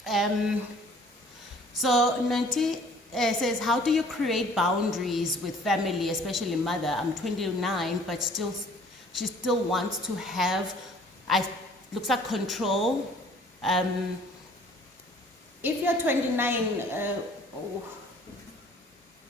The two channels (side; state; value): both; normal; correlation 0.54